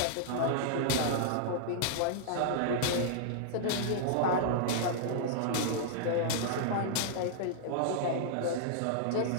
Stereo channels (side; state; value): both; different; correlation -0.01